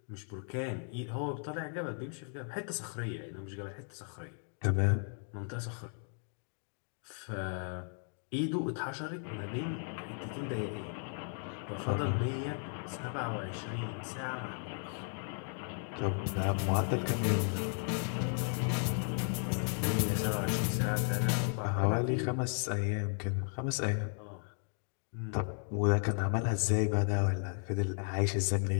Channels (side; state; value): right; silent; 54 dB below the other